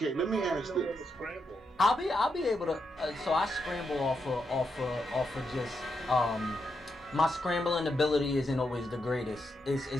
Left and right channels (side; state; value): both; normal; correlation 0.83